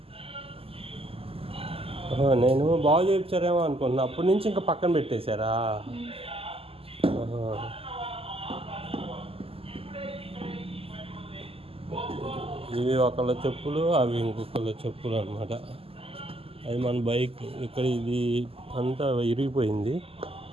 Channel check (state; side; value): late; left; 0.28 ms